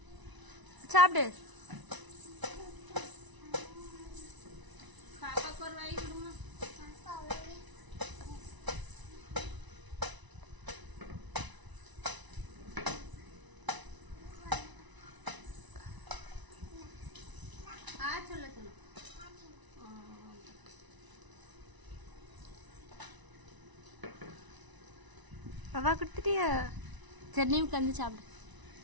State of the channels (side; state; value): left; late; 1.0 ms